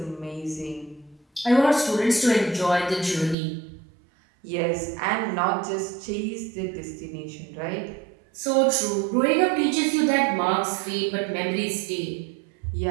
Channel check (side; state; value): left; drops out; at 3.4 s